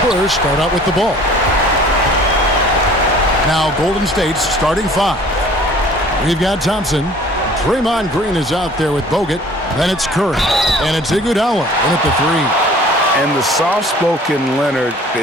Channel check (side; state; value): both; normal; correlation 0.50